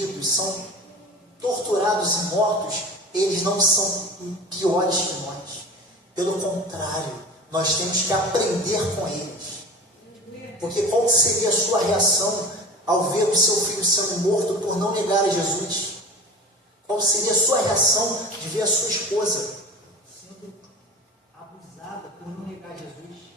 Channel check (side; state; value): both; normal; correlation 0.35